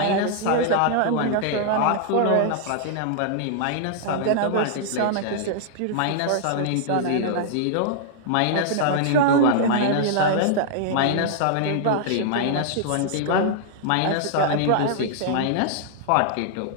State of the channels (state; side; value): different; both; correlation -0.01